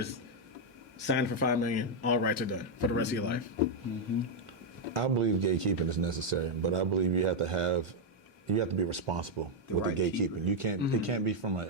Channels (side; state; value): both; normal; correlation 0.00